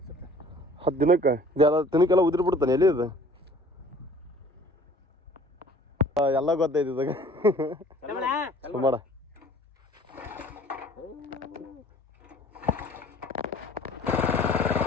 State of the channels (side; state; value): both; normal; correlation 0.51